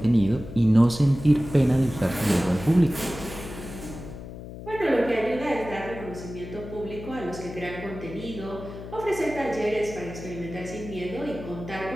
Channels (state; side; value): noise; left; hum, 12 dB below the sound